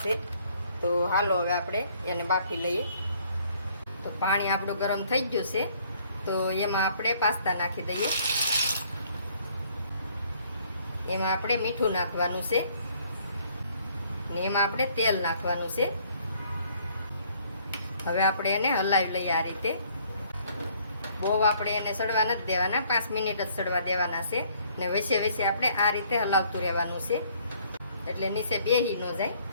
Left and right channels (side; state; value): both; inverted; correlation -0.62